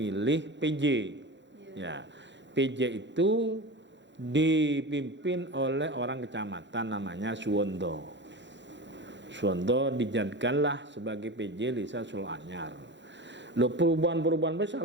PJ. Ya, PJ itu dipimpin oleh orang kecamatan namanya Suwondo. Suwondo dijadikanlah sebagai PJ Desa Solo Anyar. Loh, perubahan-perubahan besar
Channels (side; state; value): left; late; 0.52 ms